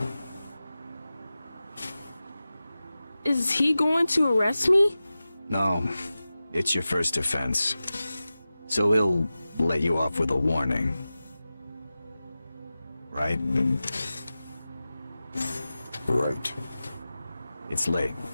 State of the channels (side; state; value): both; inverted; correlation -0.95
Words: Is he going to arrest me? No, it's your first offense. So he'll let you off with a warning. Right? Right. It's late.